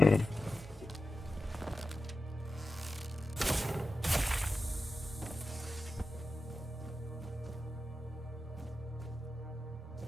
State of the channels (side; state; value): both; normal; correlation 0.92